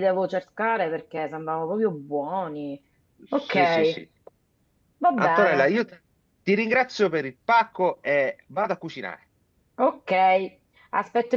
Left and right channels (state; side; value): identical; both; correlation 1.00